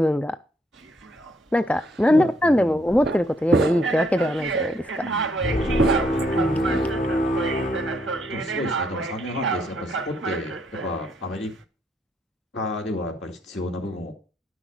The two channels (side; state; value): both; normal; correlation 0.72